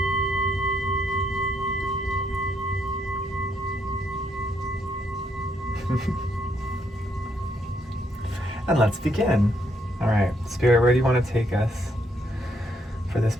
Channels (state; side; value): normal; both; correlation 0.74